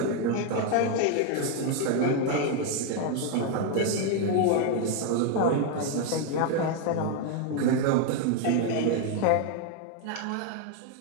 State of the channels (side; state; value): both; different; correlation 0.01